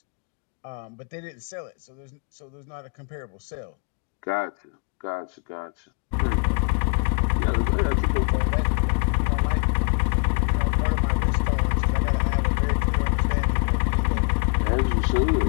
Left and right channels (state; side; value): quieter; right; 38.5 dB